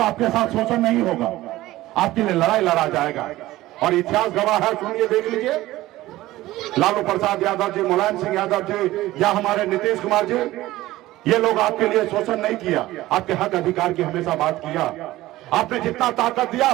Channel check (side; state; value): left; quieter; 16.7 dB